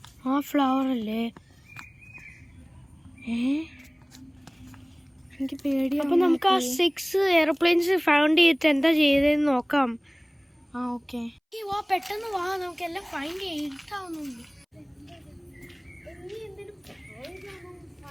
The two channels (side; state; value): both; identical; correlation 1.00